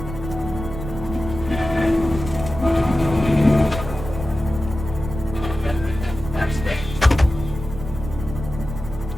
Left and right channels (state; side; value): noise; right; rumble, 9 dB below the sound